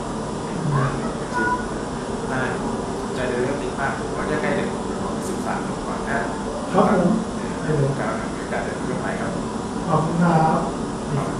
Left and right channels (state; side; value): identical; both; correlation 1.00